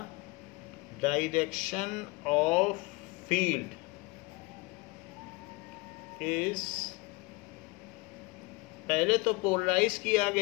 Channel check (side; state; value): right; quieter; 24.1 dB